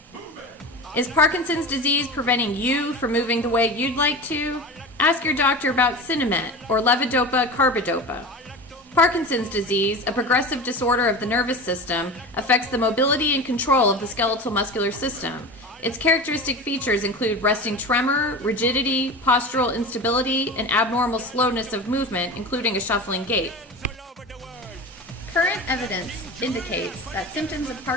move it. Is Parkinson's disease preventing you from moving the way you'd like to? Ask your doctor about Sinemet or Levodopa Carbidopa. Parkinson's disease, a progressive disorder of the nervous system, affects the mobility and control of the skeletal muscular system. Its characteristic features include resting tremor, rigidity, postural instability, and abnormal slowness of movement, including a shuffling gait. Current evidence indicates that symptoms of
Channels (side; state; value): both; normal; correlation 0.30